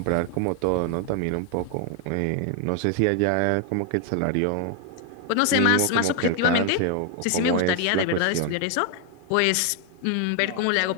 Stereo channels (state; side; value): different; both; correlation 0.01